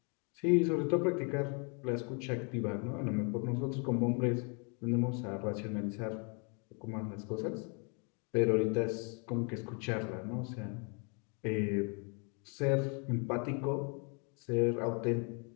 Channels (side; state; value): right; quieter; 36.5 dB